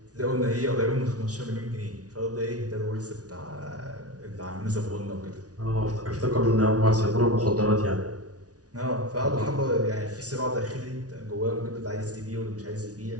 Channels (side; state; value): left; late; 0.68 ms